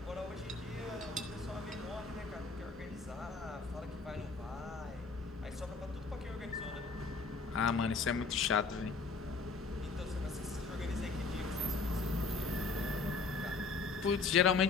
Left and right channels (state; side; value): quieter; right; 4.3 dB